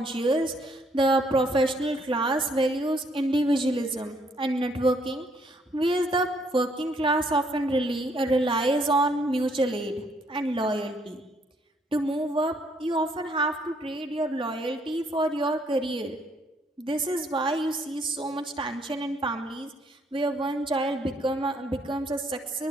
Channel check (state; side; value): normal; both; correlation 0.68